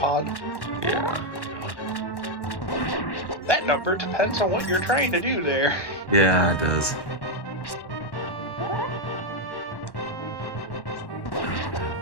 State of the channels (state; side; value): late; right; 1.1 ms